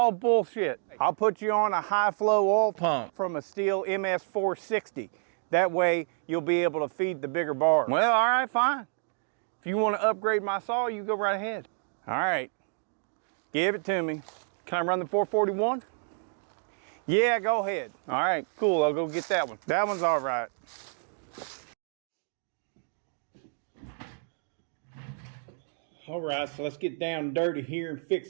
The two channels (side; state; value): left; silent; 58 dB below the other